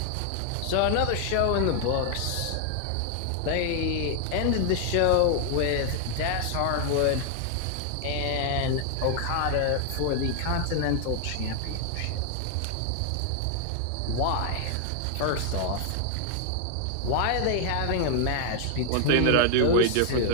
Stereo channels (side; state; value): both; different; correlation 0.00